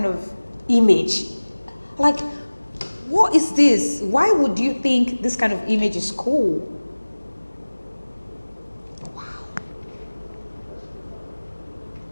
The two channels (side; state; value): both; inverted; correlation -1.00